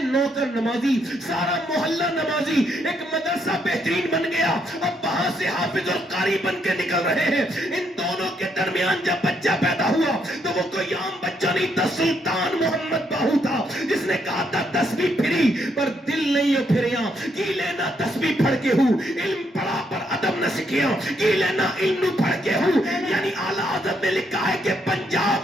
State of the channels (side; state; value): both; normal; correlation 0.75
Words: نوکر نمازی, سارا محلہ نمازی, ایک مدرسہ بہترین بن گیا. اب وہاں سے حافظ اور قاری بن کے نکل رہے ہیں. ان دونوں کے درمیان جب بچہ پیدا ہوا تو وہ کوئی عام بچہ نہیں تھا, سلطان محمد باہو تھا, جس نے کہا تھا تسبیح پھری پر دل نہیں ہو پھریا, کی لینا تسبیح پڑھ کے ہوں, علم پڑھا پر ادب نہ سکھیا, کی لینا علم پڑھ کے ہوں. یعنی اعلیٰ حضرت نے لکھا ہے کہ